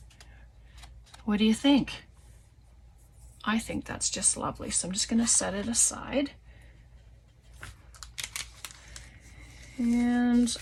What do you think? I think that's just lovely. So I'm just going to set it aside. And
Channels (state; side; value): identical; both; correlation 1.00